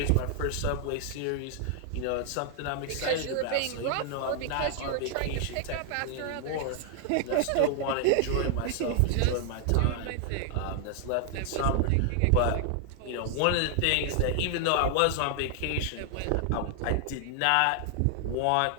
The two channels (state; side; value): different; both; correlation 0.00